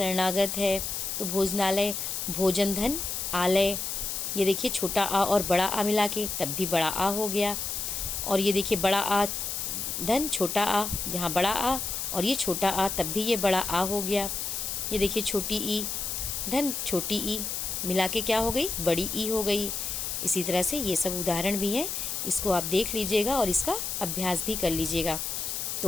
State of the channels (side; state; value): left; noise; hiss, 3 dB below the sound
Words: है। तो भोजनालय, भोजन धन आलय, ये देखिए छोटा आ और बड़ा आ मिला के तब भी बड़ा आ हो गया। और ये देखिए बड़ा आ धन छोटा आ, यहाँ बड़ा आ और ये छोटा आ तब भी ये बड़ा आ हो गया। ये देखिए छोटी ई धन छोटी ई मिला के क्या हो गई, बड़ी ई हो गई। इसी तरह से ये सब उदाहरण भी हैं, इसको आप देख लीजिएगा और इसका अभ्यास भी कर लीजिएगा।